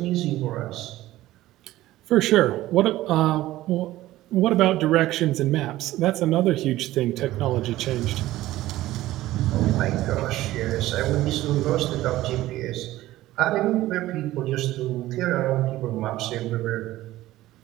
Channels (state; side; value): quieter; left; 15.9 dB